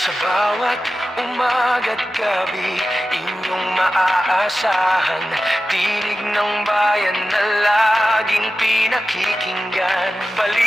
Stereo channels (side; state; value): both; normal; correlation 0.93